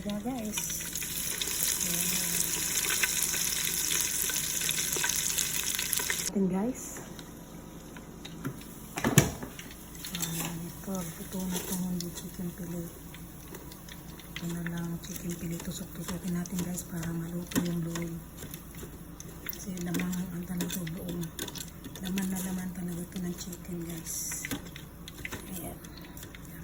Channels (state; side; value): identical; both; correlation 1.00